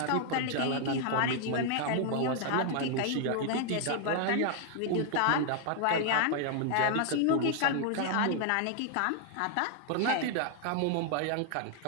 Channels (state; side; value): different; both; correlation 0.00